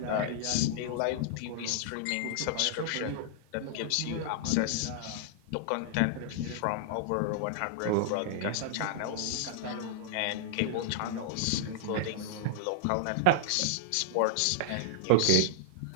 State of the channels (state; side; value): different; both; correlation -0.01